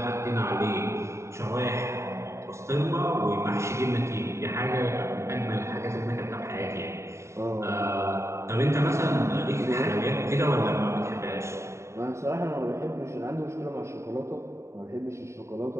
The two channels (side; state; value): left; late; 0.14 ms